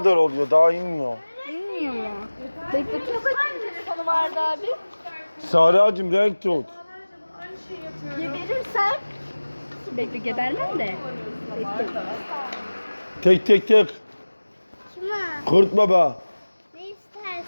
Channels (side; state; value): both; inverted; correlation -1.00